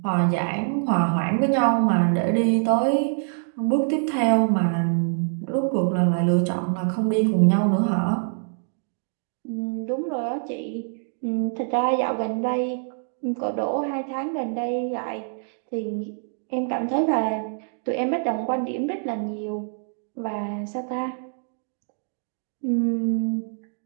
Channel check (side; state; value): left; silent; digital silence